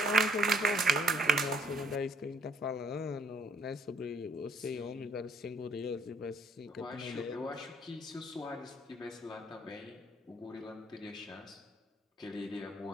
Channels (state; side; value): normal; both; correlation 0.63